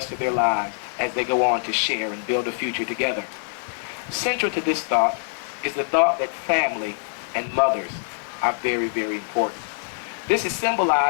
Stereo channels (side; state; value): right; silent; 62 dB below the other